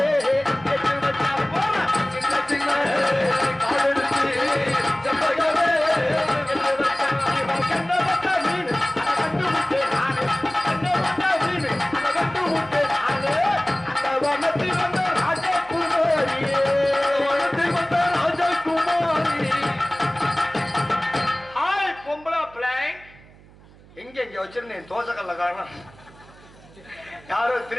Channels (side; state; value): right; noise; hum, 24 dB below the sound